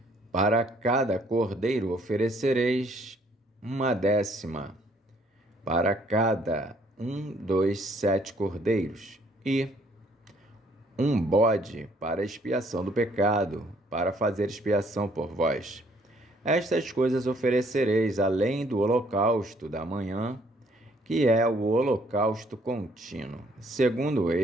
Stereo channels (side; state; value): both; normal; correlation 0.64